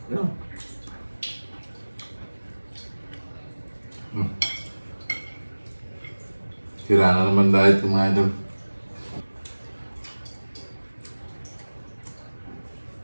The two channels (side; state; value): both; inverted; correlation -1.00